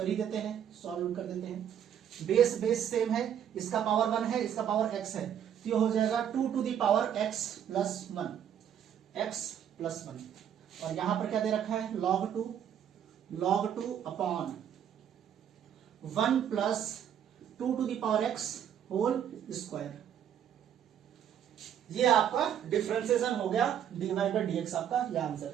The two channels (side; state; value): left; quieter; 9.4 dB